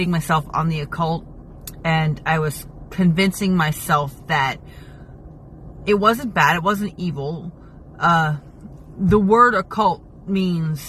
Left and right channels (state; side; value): identical; both; correlation 1.00